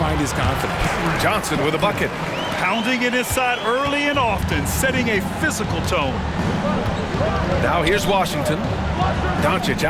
his confidence. Johnson with a bucket. Pounding it inside early and often, setting a physical tone. Now here's Washington. Doncic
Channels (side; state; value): both; identical; correlation 1.00